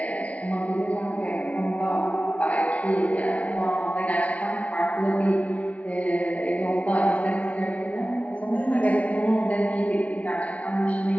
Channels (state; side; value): late; right; 0.066 ms